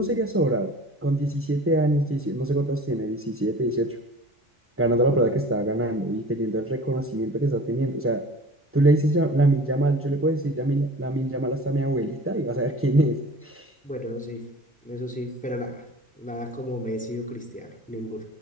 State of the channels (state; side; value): normal; both; correlation 0.42